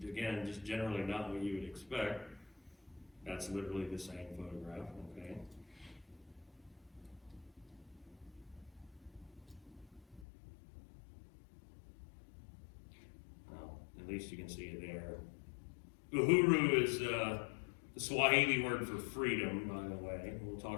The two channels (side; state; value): right; drops out; at 10.2 s